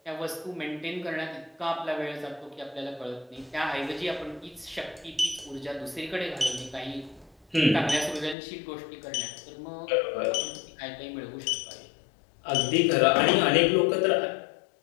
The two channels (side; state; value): right; drops out; at 8.3 s